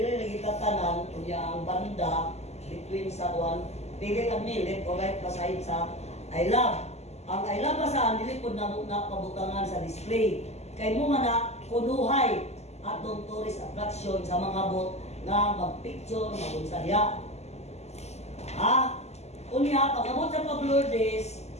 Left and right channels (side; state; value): right; late; 0.32 ms